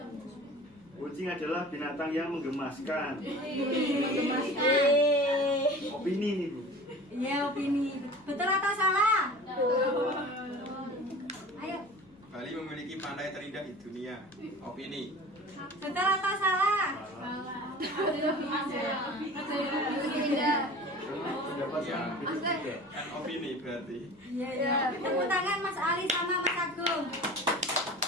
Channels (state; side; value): noise; left; hum, 29 dB below the sound